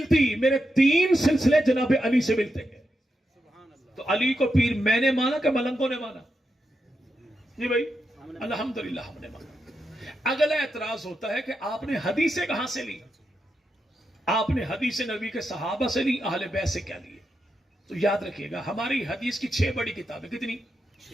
میرے 3 سلسلے جناب علی سے ملتے ہیں. تو علی کو پیر میں نے مانا کہ ملنگوں نے مانا؟ جی بھائی الحمدللہ ہم نے مانا. اگلا اعتراض ہوتا ہے کہ آپ نے حدیثیں کہاں سے لی؟ آپ نے حدیث نبی کے صحابہ سے لی, اہل بیت سے کیا لیے؟ تو یاد رکھیے گا ہماری حدیث کی 6 بڑی کتابیں. کتنی؟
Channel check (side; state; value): both; normal; correlation 0.86